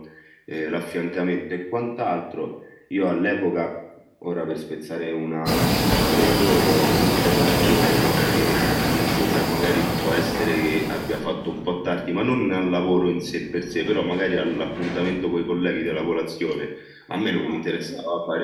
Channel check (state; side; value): identical; both; correlation 1.00